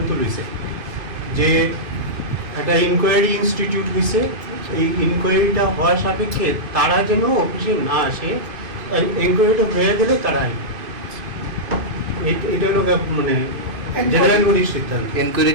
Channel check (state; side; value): late; left; 2.5 ms